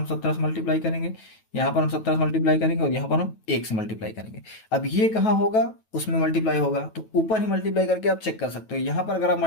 17 से मल्टीप्लाई करेंगे, यहाँ पर हम 17 से मल्टीप्लाई करेंगे, और यहाँ पर हम 1 से मल्टीप्लाई करेंगे। अब ये कहाँ होगा, उसमें मल्टीप्लाई होगा, तो ऊपर ही मल्टीप्लाई करके आप चेक कर सकते हो। यहाँ पर अगर आप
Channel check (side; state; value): right; late; 9.2 ms